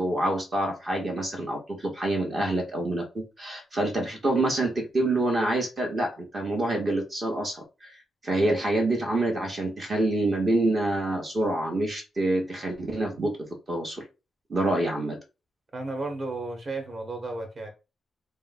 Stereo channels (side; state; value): both; normal; correlation 0.83